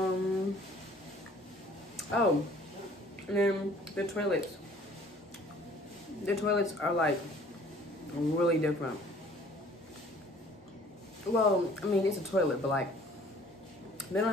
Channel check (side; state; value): both; normal; correlation 0.54